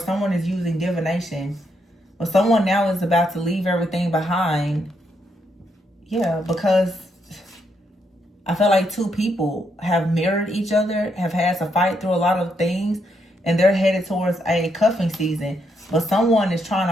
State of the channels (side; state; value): both; normal; correlation 0.78